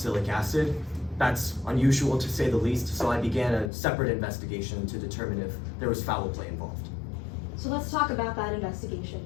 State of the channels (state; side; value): drops out; right; at 3.7 s